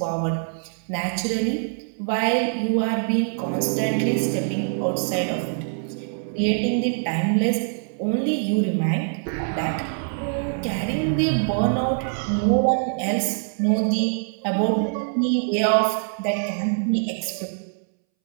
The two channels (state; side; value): silent; left; 63 dB below the other